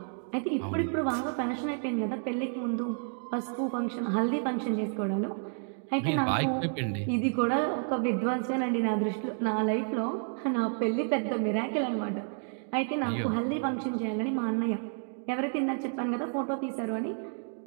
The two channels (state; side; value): silent; left; 56 dB below the other